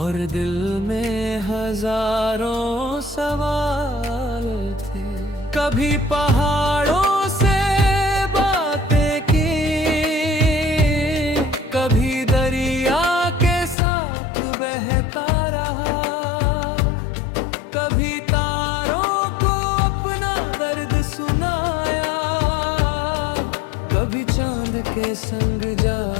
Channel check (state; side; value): drops out; right; at 13.8 s